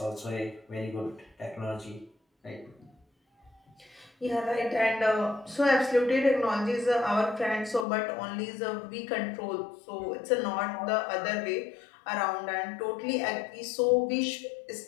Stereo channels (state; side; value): drops out; right; at 7.9 s